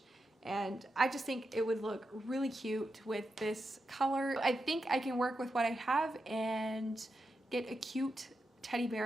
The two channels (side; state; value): both; normal; correlation 0.87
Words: And I just think it would look really cute with this color. I think I can work with what I have and get a cute teddy